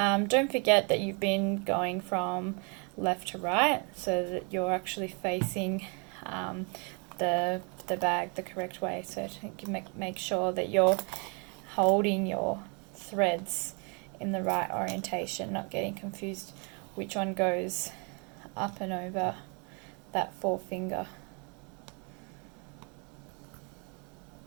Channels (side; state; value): left; quieter; 34.6 dB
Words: forget that you've been going from left to right, so that you're actually facing the bag the correct way. So to make sure that you're holding your threads in the right orientation, not getting confused which one goes up and over that forefinger.